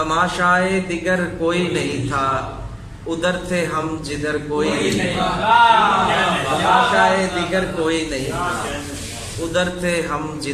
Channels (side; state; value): both; identical; correlation 1.00